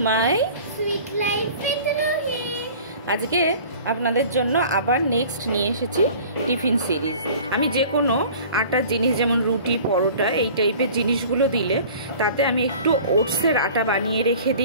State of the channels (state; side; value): inverted; both; correlation -0.45